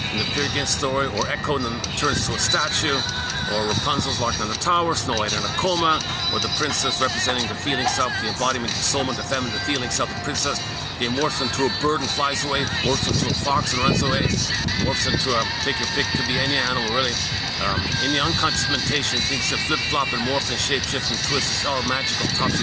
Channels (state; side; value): identical; both; correlation 1.00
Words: in the Peer Gynt story, or Echo and then turns to a statue, or Rapunzel's locked in a tower, Snow White in a coma, or the princess representing the feeling self, the embodiment, the soul, the feminine, the feeling self, the princess. They morphs into a bird and flies away, morphs into a fox and runs away, morphs into take your pick, could be any animal really. In the unconscious mentation, things that flip-flop and morph and shape-shift and twist. It's all magical,